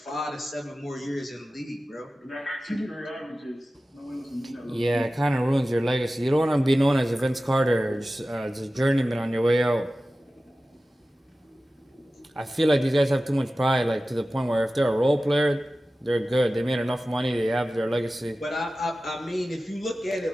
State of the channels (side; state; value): both; normal; correlation 0.96